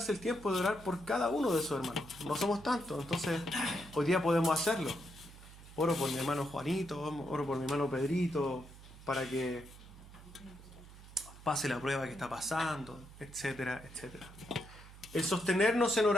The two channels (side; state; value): right; noise; hum, 18 dB below the sound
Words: el tiempo de orar por cada uno de sus hermanos. No somos tantos, entonces hoy día podemos hacerlo. Oro por mi hermano Juanito, oro por mi hermano Pedrito, para que pase la prueba que está pasando, etcétera, etcétera. El sostenernos en